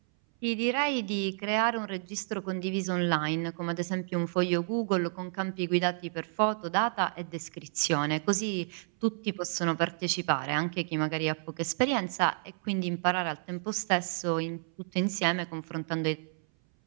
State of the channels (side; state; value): left; silent; 57 dB below the other